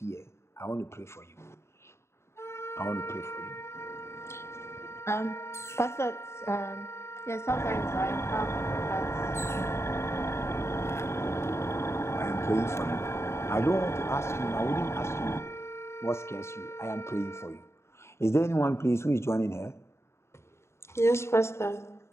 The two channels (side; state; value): right; late; 0.13 ms